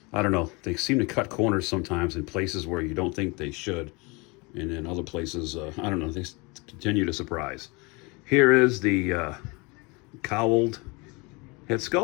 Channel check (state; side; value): quieter; right; 27.5 dB